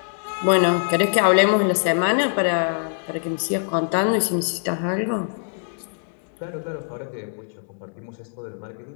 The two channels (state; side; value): silent; right; digital silence